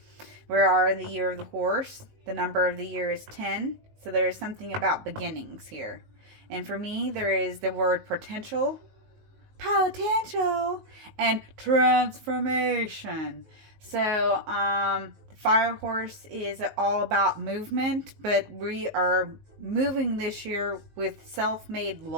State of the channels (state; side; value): late; left; 19 ms